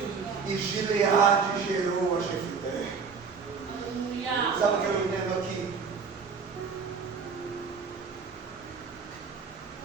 E Gileade gerou a Jefté. Sabe o que eu entendo aqui?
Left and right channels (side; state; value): left; quieter; 5.5 dB